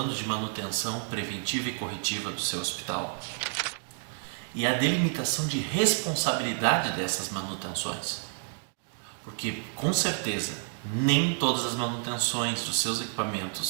de manutenção preventiva e corretiva do seu hospital e a delimitação de responsabilidade dessas manutenções. Porque, com certeza, nem todas as manutenções dos seus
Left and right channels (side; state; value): left; silent; 58 dB below the other